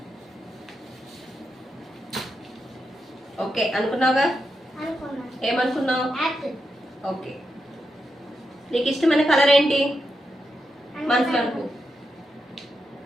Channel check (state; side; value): normal; both; correlation 0.86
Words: ఓకే అనుకున్నావుగా? అనుకున్నా. ఏమనుకున్నావు? యాపిల్. ఓకే. నీకు ఇష్టమైన కలర్ ఏంటి మనసులో అనుకో.